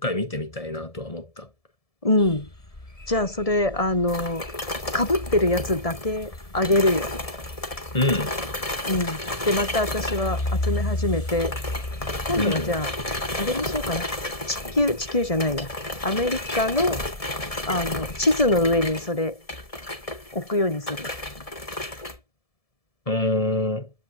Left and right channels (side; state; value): right; late; 1.7 ms